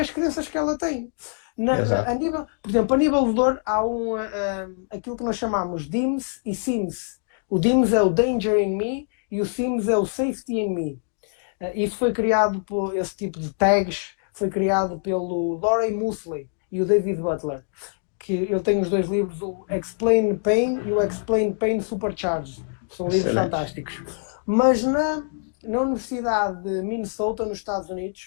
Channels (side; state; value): right; silent; digital silence